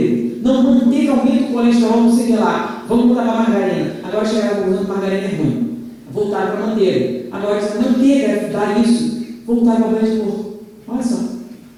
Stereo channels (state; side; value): identical; both; correlation 1.00